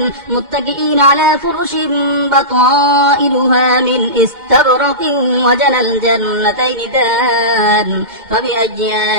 متكئين على فرش بطائنها من استبرق وجنى الجنتين دان فبأي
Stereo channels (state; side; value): late; left; 2.1 ms